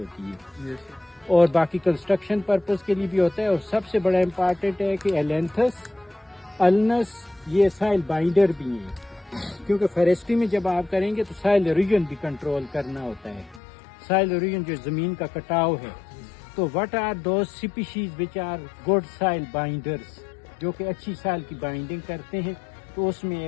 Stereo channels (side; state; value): right; drops out; at 13.6 s